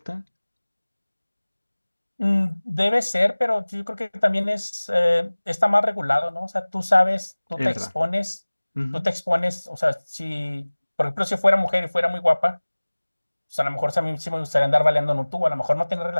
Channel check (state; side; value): inverted; both; correlation -1.00